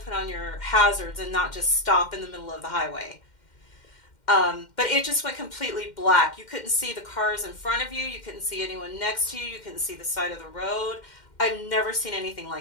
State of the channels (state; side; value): late; right; 2.1 ms